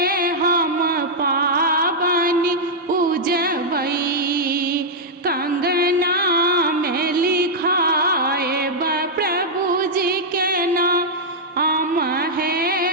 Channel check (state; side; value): normal; both; correlation -0.05